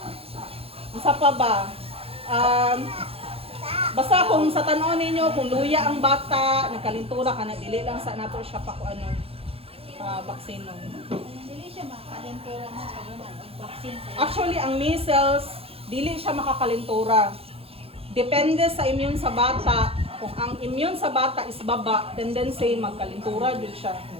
Isa pa ba? Basta kung sa tanon ninyo, kung luya ang bata, nagkalintura ka na, dili lang sa nato siya pa kung ano, vaccine. Dili siya makalentura na sa naman ang vaccine. Actually, ang measles, dili siya makakalintura. Depende sa immune sa bata. Kung ang immune sa bata is baba, tendency magkalintura jud siya.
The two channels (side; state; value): left; late; 0.28 ms